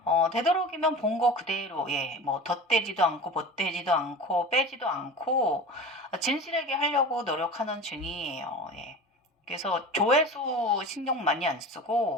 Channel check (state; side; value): normal; both; correlation 0.34